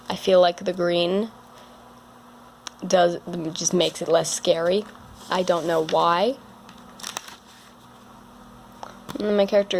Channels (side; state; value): both; identical; correlation 1.00